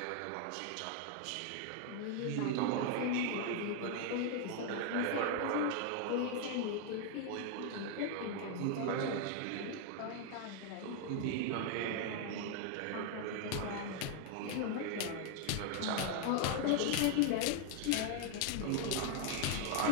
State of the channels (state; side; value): different; both; correlation 0.00